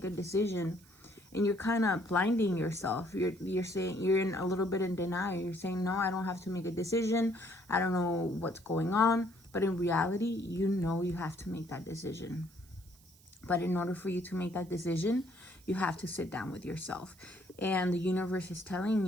a decision and you're kind of blinding yourself. You're saying, you're in a little bit in denial. You're saying, no, I don't have to make a decision. I don't know what's going on. But in reality, you know you have to make that decision. But in order for you to make that decision, you have to sit down with yourself. And the universe is telling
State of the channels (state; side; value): noise; right; hiss, 27 dB below the sound